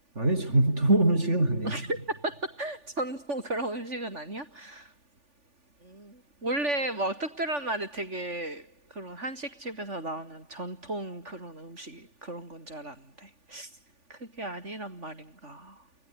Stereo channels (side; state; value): left; late; 3.5 ms